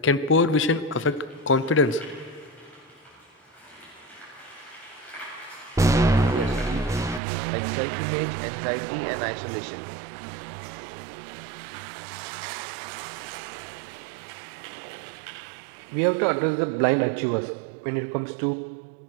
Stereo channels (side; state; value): left; drops out; at 7.2 s